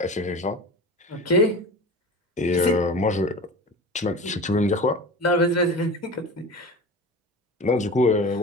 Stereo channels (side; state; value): both; normal; correlation 0.33